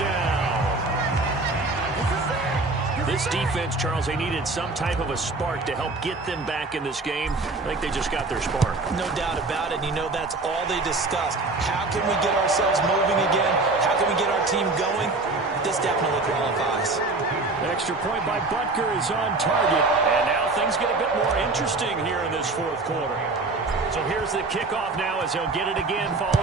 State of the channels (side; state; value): left; quieter; 3.4 dB